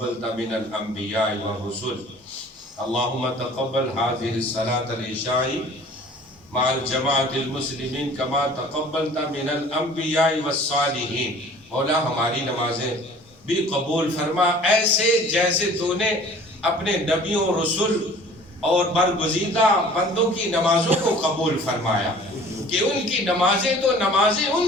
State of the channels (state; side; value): normal; both; correlation 0.48